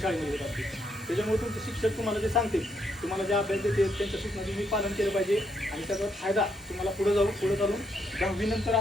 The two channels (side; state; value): both; normal; correlation 0.75